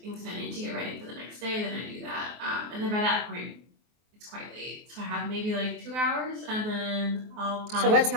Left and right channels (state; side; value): late; left; 24 ms